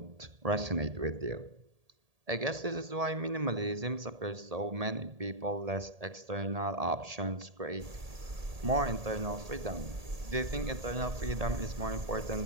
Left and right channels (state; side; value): late; left; 1.8 ms